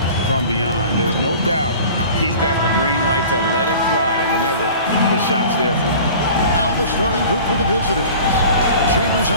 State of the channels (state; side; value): inverted; both; correlation -0.42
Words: from beyond. There's no doubt he's got the green light to let it fly whenever the shot's there for him. Now the starting group for the visitors. Chambers